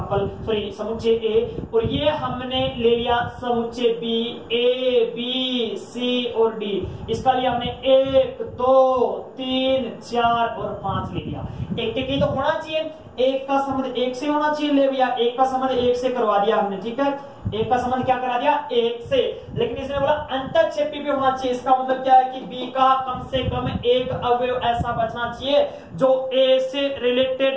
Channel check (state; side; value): identical; both; correlation 1.00